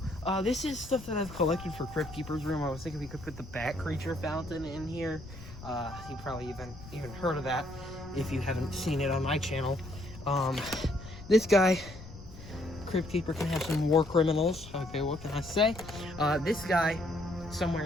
this is stuff that I've collected for Crypt Keeper's room. I was thinking we could put the Bat Creature fountain in here. You probably even heard of that if you haven't seen it on my channel. This guy, Crypt Keeper, can have some war criminals. Okay, what can I say? This guy, somewhere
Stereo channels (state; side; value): noise; left; rumble, 15 dB below the sound